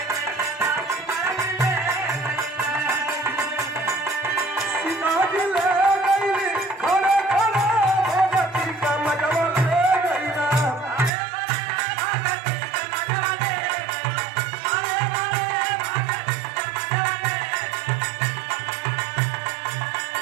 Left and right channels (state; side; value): drops out; left; at 11.1 s